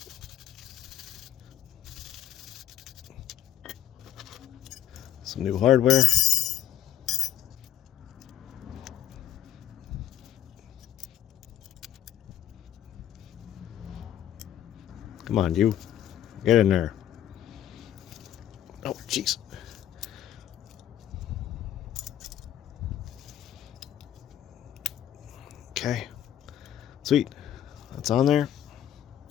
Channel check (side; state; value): right; quieter; 11.3 dB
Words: Some new hardware. Come on, you. Get in there. Oh, jeez. Okay. Sweet. That's on there.